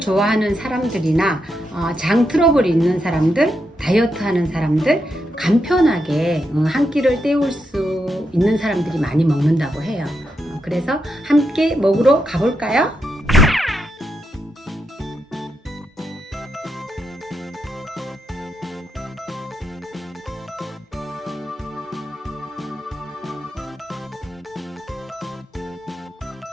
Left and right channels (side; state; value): both; normal; correlation 0.83